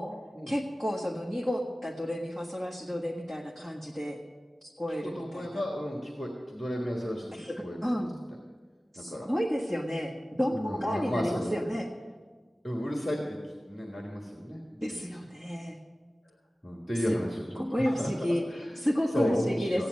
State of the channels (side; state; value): both; normal; correlation 0.97